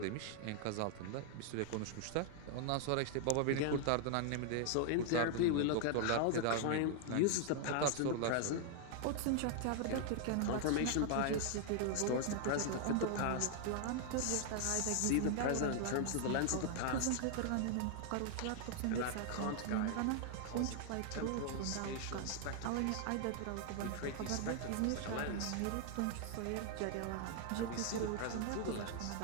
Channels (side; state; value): both; different; correlation 0.00